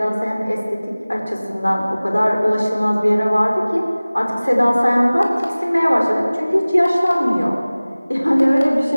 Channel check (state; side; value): inverted; both; correlation -0.99